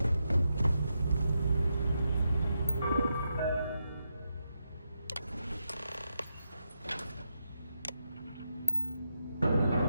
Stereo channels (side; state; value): both; inverted; correlation -0.85